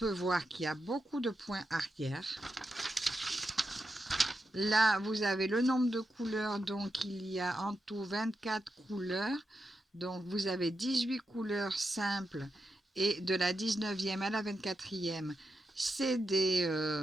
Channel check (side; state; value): both; normal; correlation 0.87